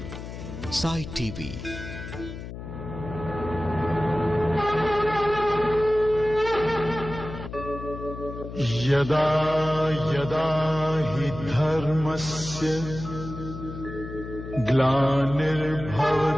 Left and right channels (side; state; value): left; noise; hum, 10 dB below the sound